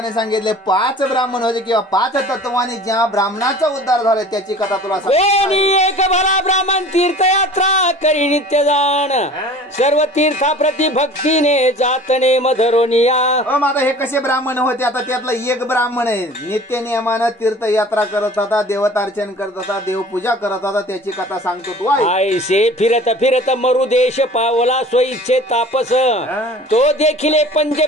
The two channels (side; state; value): both; normal; correlation 0.44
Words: सांगितले 5 ब्राह्मण होते किंवा 5 तत्वानी ज्या ब्राह्मणाचा उद्धार झाला त्याची कथा तुला एक भला ब्राह्मण तीर्थयात्रा करी नित्य जाण. सर्व तीर्थाप्रती भक्तीने जातने मधरोनिया. आता हे कसे ब्राह्मण होते? आता त्यातला एक ब्राह्मण आहे नित्य नियमानं तीर्थयात्रा करत होता, देवतार्चन करत होता, देवपूजा करत होता. त्याची कथा सांगतो तू. ऐसे फिरत फिरत मरुदेश पावला स्वइच्छे तापस. तो देखील